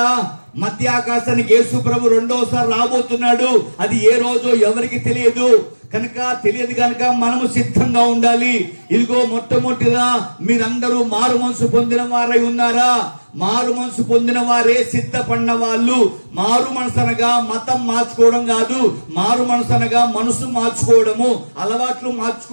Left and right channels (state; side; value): inverted; both; correlation -1.00